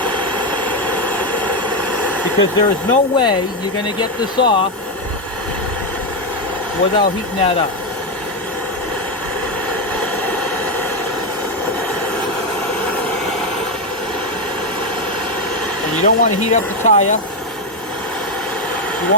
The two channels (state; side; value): normal; both; correlation 0.07